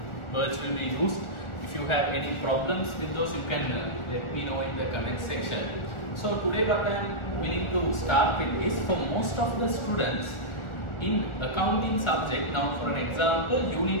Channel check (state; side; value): late; right; 1.4 ms